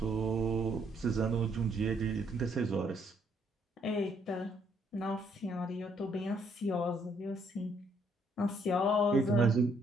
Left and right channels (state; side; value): normal; both; correlation 0.69